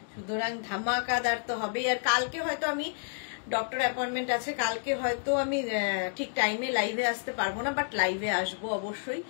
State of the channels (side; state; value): right; silent; digital silence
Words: সুতরাং ধামাকাদার তো হবেই। আর কালকে হয়তো আমি ডক্টর অ্যাপয়েন্টমেন্ট আছে কালকে, হয়তো আমি ঠিক টাইমে লাইভে আসতে পারবো না, বাট লাইভে আসবো অবশ্যই।